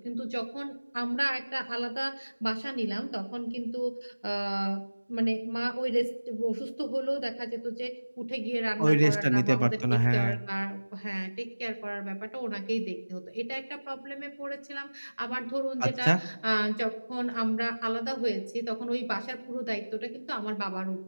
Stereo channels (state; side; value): inverted; both; correlation -1.00